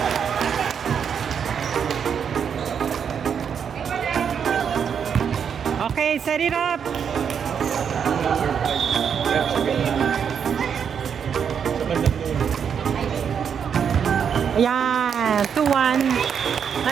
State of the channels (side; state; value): left; quieter; 7.4 dB